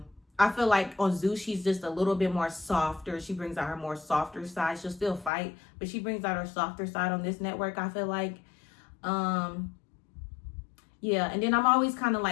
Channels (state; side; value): drops out; right; at 5.3 s